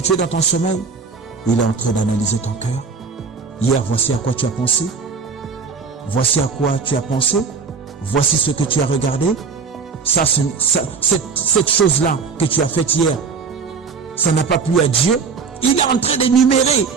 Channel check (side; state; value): left; quieter; 5.2 dB